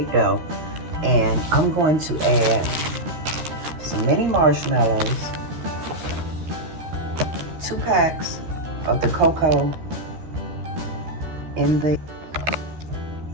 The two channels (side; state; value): left; late; 13 ms